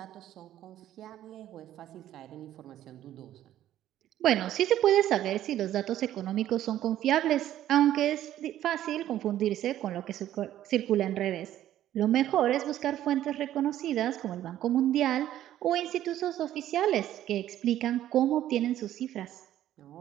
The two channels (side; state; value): left; quieter; 12.4 dB